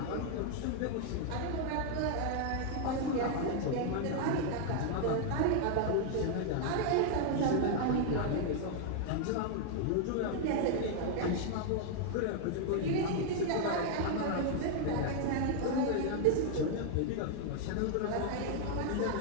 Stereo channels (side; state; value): both; different; correlation 0.00